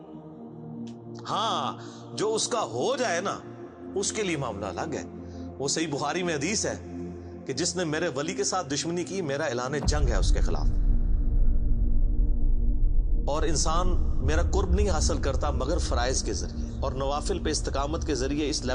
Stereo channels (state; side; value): identical; both; correlation 1.00